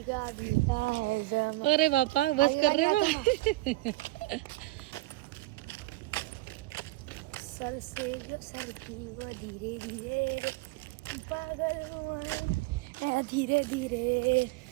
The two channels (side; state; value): left; quieter; 19.5 dB